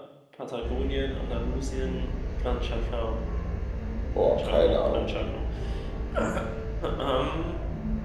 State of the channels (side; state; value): both; identical; correlation 1.00